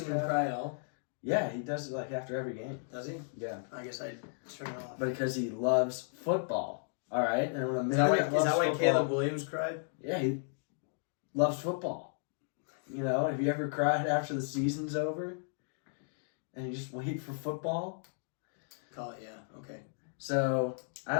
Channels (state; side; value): silent; right; digital silence